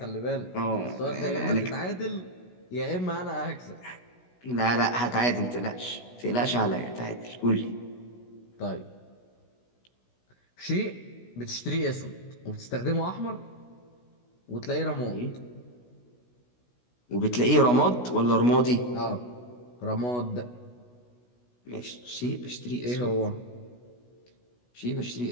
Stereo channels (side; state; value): right; late; 16 ms